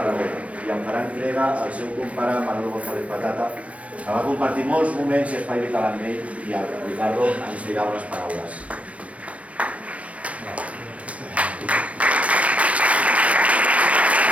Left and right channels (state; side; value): late; left; 0.065 ms